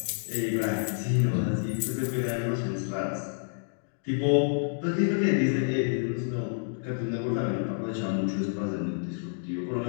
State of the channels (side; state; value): right; silent; digital silence